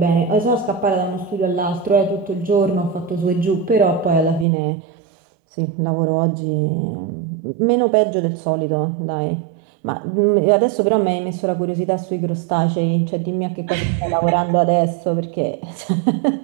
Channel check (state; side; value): drops out; left; at 4.5 s